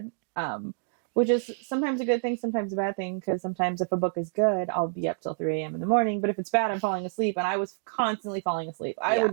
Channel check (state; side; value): silent; left; digital silence